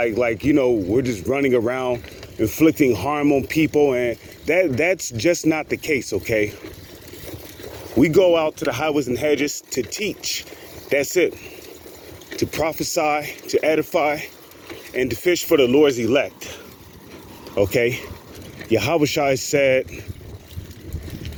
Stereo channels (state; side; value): identical; both; correlation 1.00